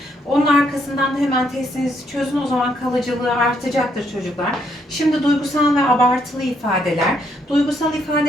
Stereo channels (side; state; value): both; normal; correlation 0.73